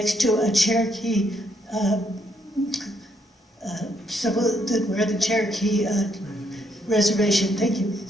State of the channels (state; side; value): normal; both; correlation 0.73